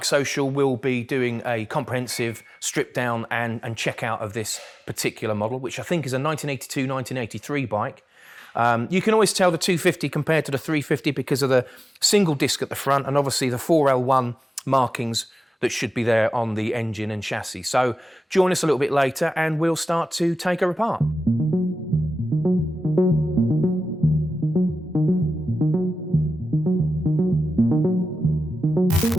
will be doing a comprehensive strip down and check out of this particular model, which I think is a 1982-1983 bike. You can always tell the 250 compared to the 350 because of the single disc at the front and obviously the 4L1 markings that should be there on the engine and chassis. So join us a little bit later and we'll start to take her apart.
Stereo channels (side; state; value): both; normal; correlation 0.94